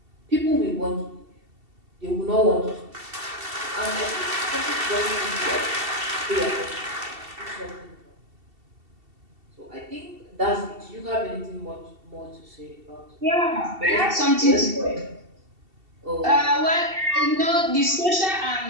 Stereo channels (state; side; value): late; left; 2.7 ms